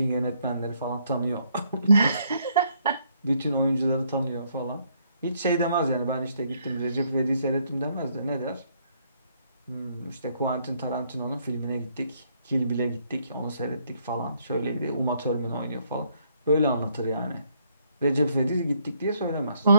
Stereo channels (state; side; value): inverted; both; correlation -0.70